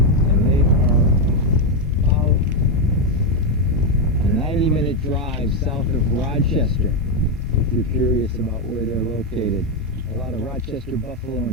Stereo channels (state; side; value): normal; both; correlation 0.04